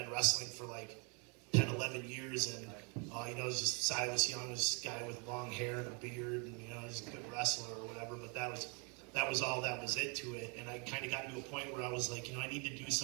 wrestling for 10, 11 years. And, it was just Silas Young, this guy with long hair and a beard, and, just a good wrestler or whatever. But that was all that was it to it. And I kind of got to a point where I was I need to do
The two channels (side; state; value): left; quieter; 34.8 dB